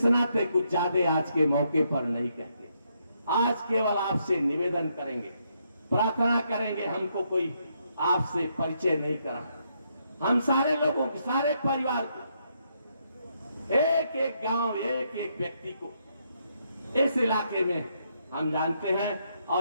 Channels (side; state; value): both; inverted; correlation -0.76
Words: नाते कुछ ज्यादा आज के मौके पर नहीं कहते। आज केवल आपसे निवेदन करेंगे, प्रार्थना करेंगे, हमको कोई आपसे परिचय नहीं करा। हम सारे लोगों को, सारे परिवार को, एक एक गांव, एक एक व्यक्ति को इस इलाके में हम जानते हैं